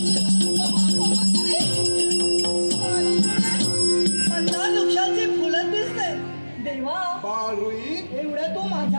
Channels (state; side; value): inverted; both; correlation -1.00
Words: मंदार वृक्षाची फुलं दिसते. देवा बाळरोही, एवढं तू